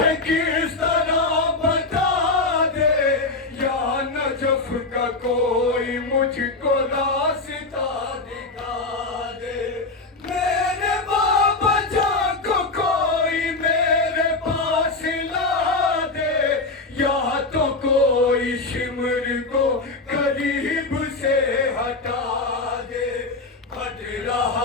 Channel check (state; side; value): quieter; right; 3.4 dB